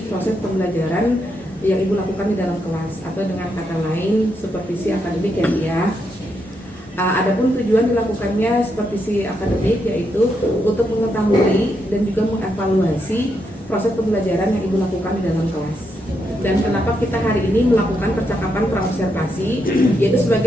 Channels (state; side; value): normal; both; correlation 0.81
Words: proses pembelajaran yang Ibu lakukan di dalam kelas, atau dengan kata lain supervisi akademik ya Bu ya. Adapun tujuan dilakukannya supervisi akademik yaitu untuk mengetahui dan juga mengevaluasi proses pembelajaran yang Ibu lakukan di dalam kelas. Dan kenapa kita hari ini melakukan percakapan pra-observasi, yaitu